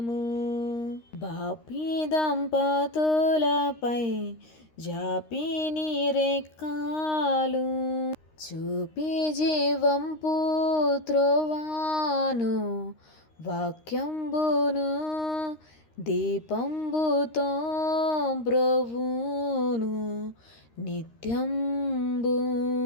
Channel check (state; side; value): late; right; 13 ms